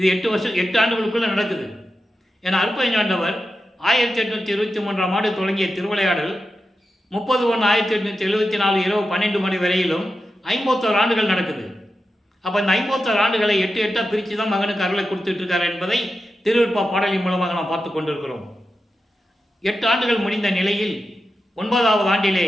8 ஆண்டுகளுக்குள்ளே நடக்குது. ஏன்னா அற்பஞாண்டவர் 1823ஆம் ஆண்டு தொடங்கிய திருவிளையாடல் 30/1/1874 இரவு 12 மணி வரையிலும் 51 ஆண்டுகள் நடக்குது. அப்போ இந்த 51 ஆண்டுகளை 8 பிரித்து தான் மகனுக்கு அருளை கொடுத்துட்டு இருக்கார் என்பதை திருவிற்பா பாடலின் மூலமாக நாம் பார்த்து கொண்டிருக்கிறோம். 8 ஆண்டுகள் முடிந்த நிலையில் 9வது ஆண்டிலே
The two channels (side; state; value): both; normal; correlation 0.90